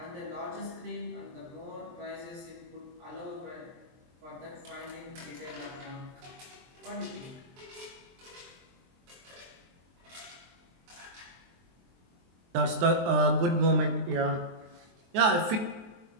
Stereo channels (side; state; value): left; late; 23 ms